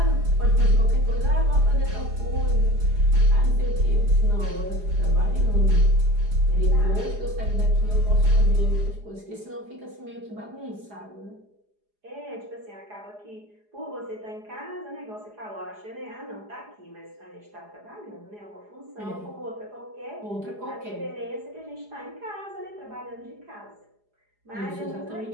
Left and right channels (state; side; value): late; left; 4.8 ms